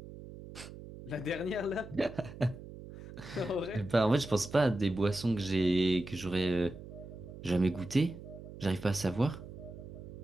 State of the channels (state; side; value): noise; right; hum, 14 dB below the sound